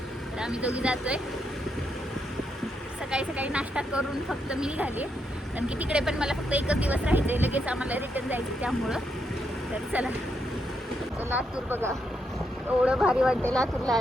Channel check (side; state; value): both; normal; correlation 0.80